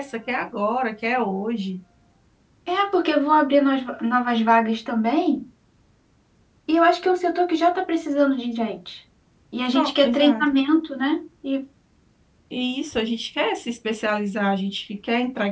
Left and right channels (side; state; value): both; identical; correlation 1.00